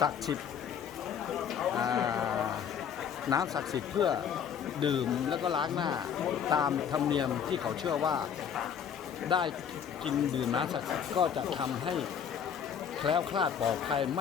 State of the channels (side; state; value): right; quieter; 8.0 dB